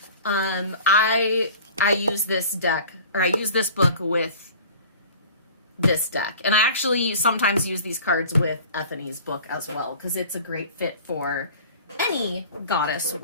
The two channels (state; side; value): inverted; both; correlation -0.44